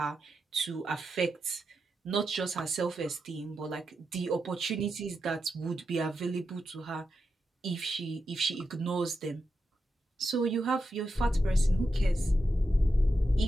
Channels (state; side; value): normal; both; correlation 0.87